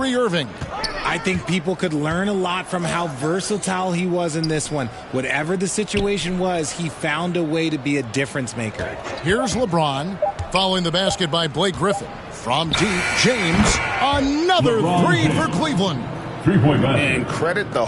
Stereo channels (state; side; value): identical; both; correlation 1.00